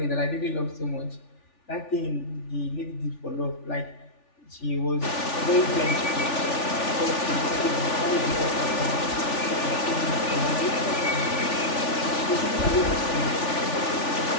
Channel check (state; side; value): late; right; 3.4 ms